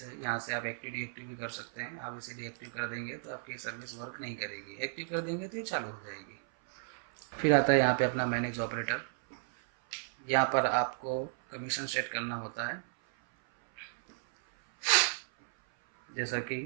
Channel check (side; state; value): left; silent; 55 dB below the other